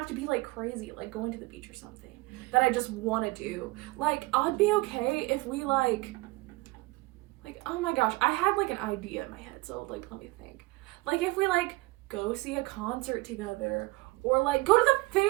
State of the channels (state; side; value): quieter; left; 22.4 dB